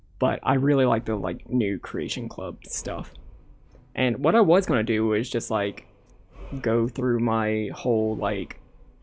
But I really like the new Creation Club stuff. And what I was gonna do was just go through my whole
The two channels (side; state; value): both; identical; correlation 1.00